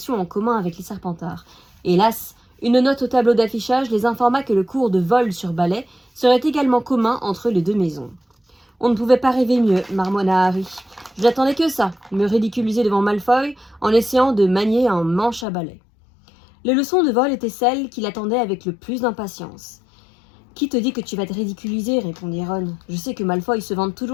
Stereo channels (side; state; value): right; drops out; at 15.5 s